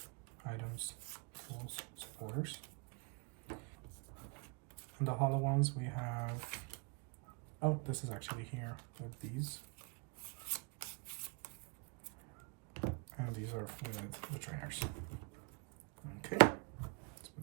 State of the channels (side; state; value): left; quieter; 32.3 dB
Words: items, tools, supporters. And the hollow ones we have, oh, this is actually here with these. And these are with the trainers. Okay, let's